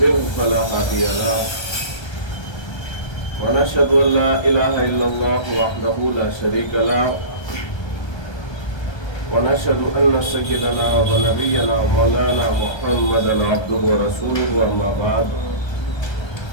فلا هادي له ونشهد ان لا اله الا الله وحده لا شريك له ونشهد ان سيدنا ونبينا مولانا محمدا عبده ورسوله اما بعد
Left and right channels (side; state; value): right; late; 1.3 ms